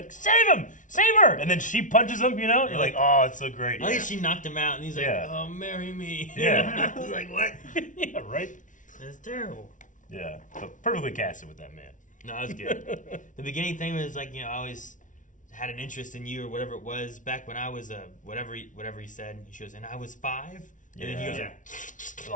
save him! Save her! And then she punches him, you know? You're like, oh, it's so great. I think she knocked him out, and he's like, oh, marry me. Yeah. I was like, what? Yeah, right? That's terrible. Yeah. But perfectly casted with that man. No, that was good. The beginning thing was like, I always had an interest in you or whatever it was back when I was whatever he said. She goes, and I was 5? And then he goes,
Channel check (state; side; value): late; right; 0.37 ms